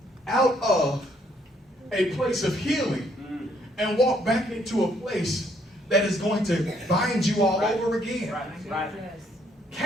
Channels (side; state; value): both; normal; correlation 0.68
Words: out of a place of healing and walk back into a place that is going to bind you all over again. Right. Right.